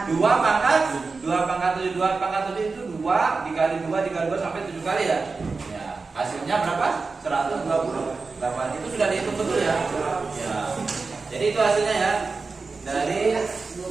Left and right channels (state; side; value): quieter; left; 4.2 dB